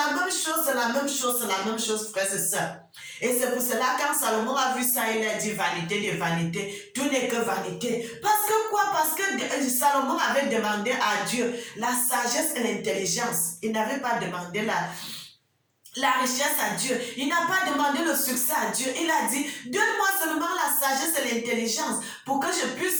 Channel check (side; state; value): both; identical; correlation 1.00